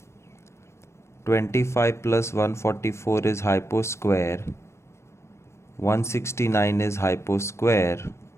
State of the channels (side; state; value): right; late; 0.13 ms